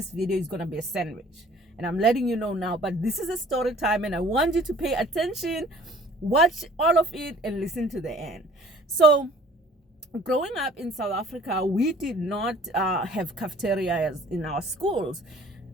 video is gonna be a sandwich. And I'm letting you know now, but this is a story time and I want you to pay attention, watch all of it, and listen to the end. So growing up in South Africa, we did not have cafeterias in our schools.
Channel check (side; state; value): both; normal; correlation 0.52